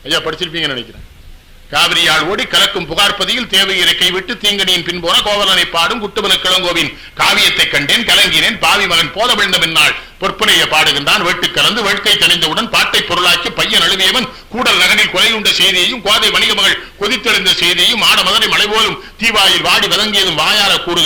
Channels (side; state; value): both; identical; correlation 1.00